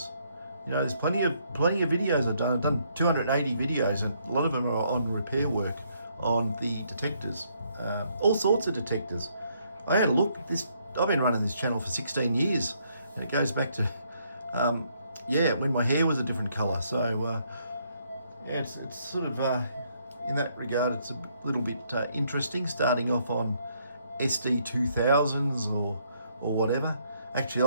There's plenty of videos I've done. I've done 280 videos, and a lot of them are on repair work on the detectors. All sorts of detectors. I had a look. I've been running this channel for 16 years, and it goes back to when my hair was a different colour. So it's sort of in that regard, it's a little bit interesting. Starting off on SD 2000s or whatever.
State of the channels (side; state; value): both; inverted; correlation -0.71